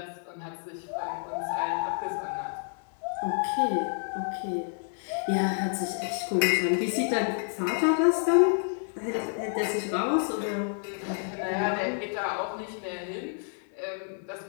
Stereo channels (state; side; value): silent; right; 58 dB below the other